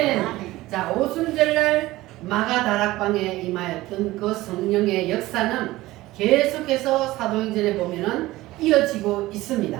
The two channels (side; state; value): left; quieter; 17.9 dB